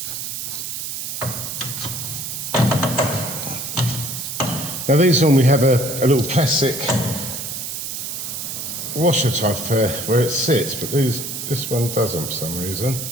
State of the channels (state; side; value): noise; right; hiss, 5 dB below the sound